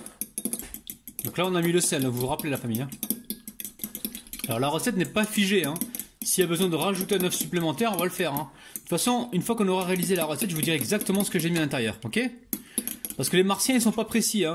Donc là, on a mis le sel, vous vous rappelez la famille. Alors la recette n'est pas figée. S'il y a besoin de rajouter un œuf supplémentaire, on va le faire. De toute façon, une fois qu'on aura réalisé la recette, je vous dirai exactement ce que j'ai mis à l'intérieur, ok? Parce que les Martiens, ils sont pas précis.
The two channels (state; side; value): identical; both; correlation 1.00